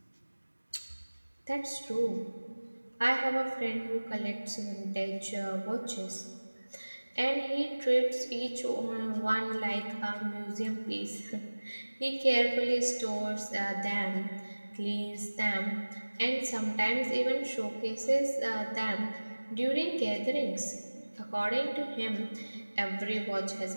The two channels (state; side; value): inverted; both; correlation -1.00